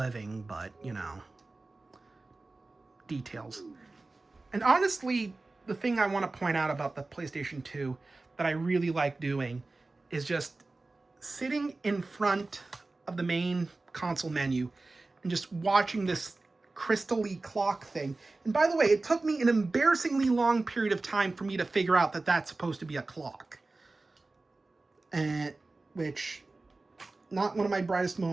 but, you know, details. And honestly, the thing I want to point out about the PlayStation 2 that I really like doing is just sitting in front of the main console menu and just watching this crystal-y clock thing. And by the way, it took me an embarrassingly long period of time for me to figure out that that's supposed to be a clock. Which, not one of my brightest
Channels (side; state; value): left; quieter; 3.3 dB